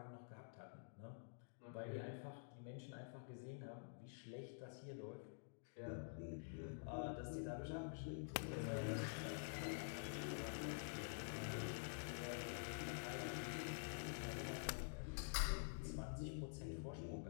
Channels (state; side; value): silent; right; digital silence